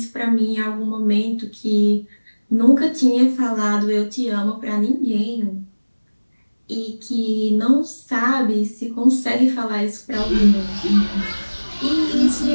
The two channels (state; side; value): inverted; both; correlation -1.00